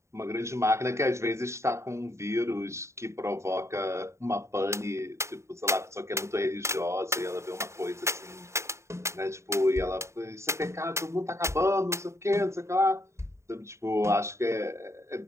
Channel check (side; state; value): left; late; 0.14 ms